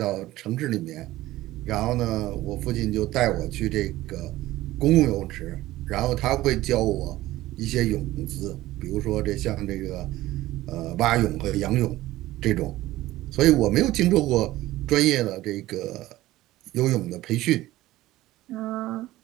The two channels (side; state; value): left; quieter; 16.5 dB